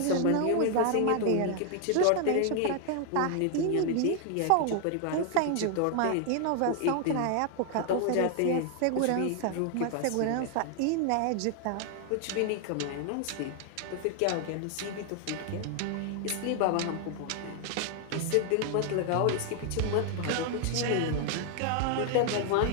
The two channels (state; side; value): different; both; correlation 0.00